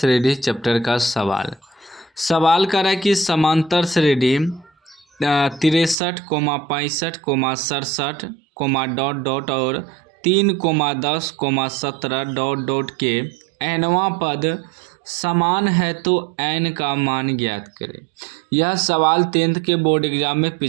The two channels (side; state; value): left; drops out; at 6.0 s